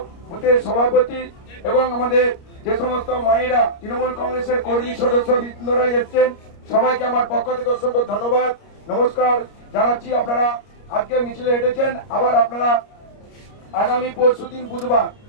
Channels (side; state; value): right; late; 29 ms